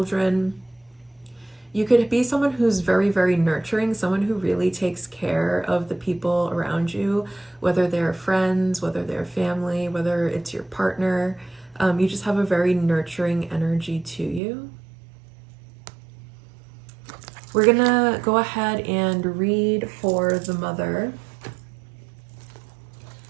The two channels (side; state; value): left; drops out; at 14.4 s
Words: you could be someone who's very, very nurturing, someone who really takes care of the people around you, whether they're friends, whether they're family, whether it's your partner. You just have a very nurturing energy to you. We're gonna go ahead and read for the Mother